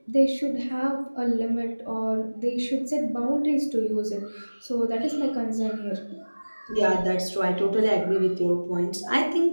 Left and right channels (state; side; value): inverted; both; correlation -1.00